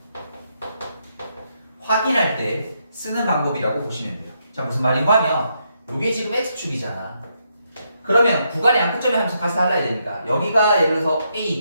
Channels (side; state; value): both; inverted; correlation -0.79